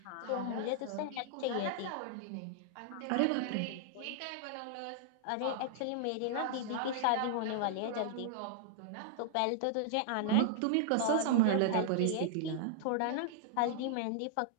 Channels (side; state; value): both; different; correlation -0.01